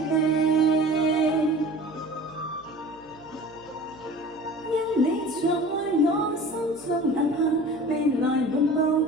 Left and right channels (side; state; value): left; noise; hum, 24 dB below the sound